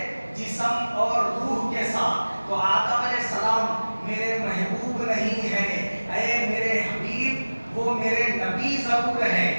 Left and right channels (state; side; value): inverted; both; correlation -1.00